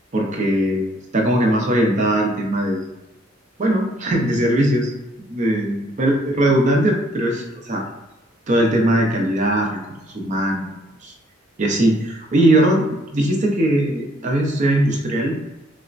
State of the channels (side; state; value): both; normal; correlation 0.65